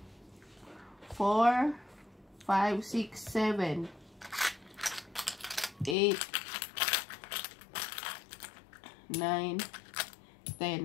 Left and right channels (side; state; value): right; drops out; at 6.0 s